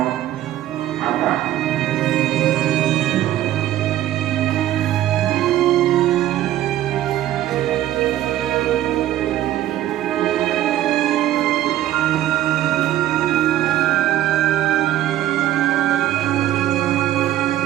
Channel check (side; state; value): left; quieter; 13.2 dB